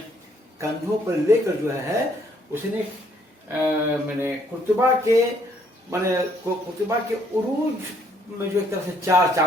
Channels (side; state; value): both; normal; correlation 0.66